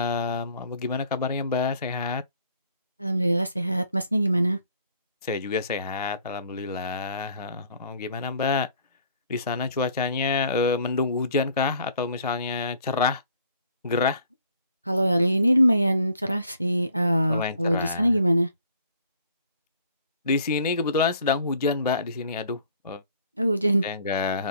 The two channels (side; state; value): both; inverted; correlation -0.59